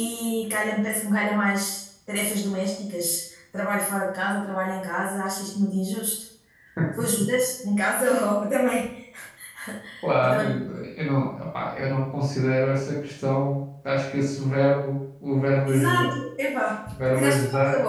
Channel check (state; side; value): identical; both; correlation 1.00